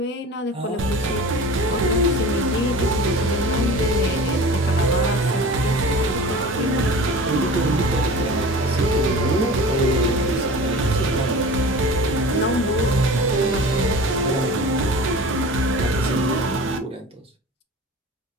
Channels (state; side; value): normal; both; correlation 0.37